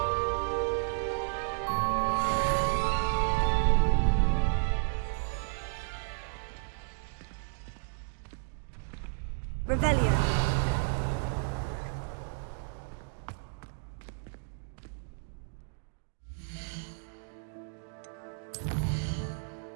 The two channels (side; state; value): left; silent; digital silence